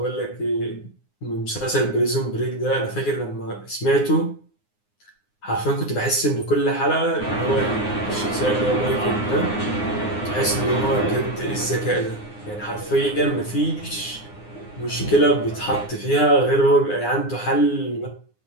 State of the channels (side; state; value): right; late; 9.7 ms